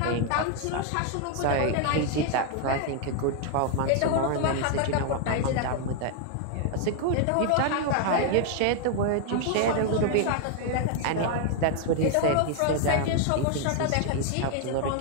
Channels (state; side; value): different; both; correlation 0.00